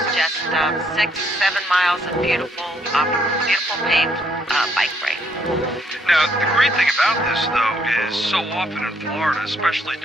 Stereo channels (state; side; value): normal; both; correlation 0.70